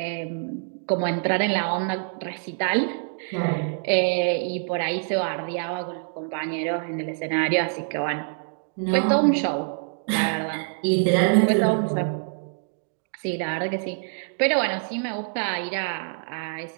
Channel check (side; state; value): left; silent; digital silence